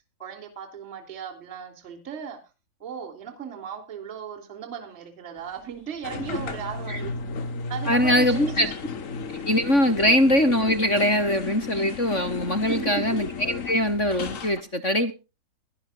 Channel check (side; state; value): right; late; 3.5 ms